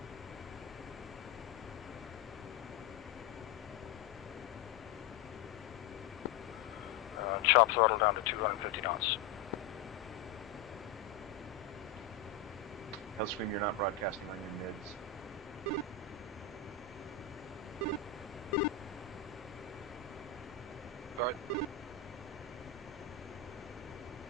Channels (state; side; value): quieter; right; 6.9 dB